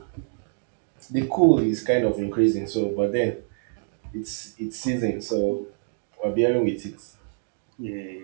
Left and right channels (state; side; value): silent; left; digital silence